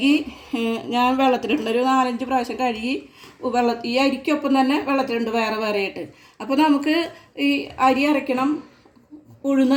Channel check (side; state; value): both; identical; correlation 1.00